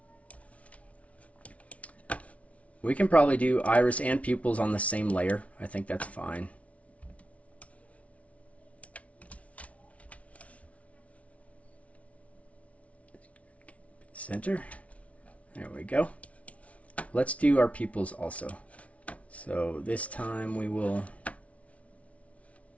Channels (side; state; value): right; late; 0.065 ms